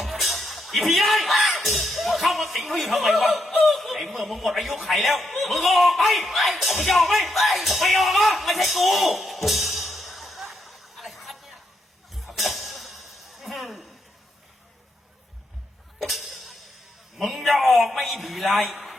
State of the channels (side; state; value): both; normal; correlation 0.79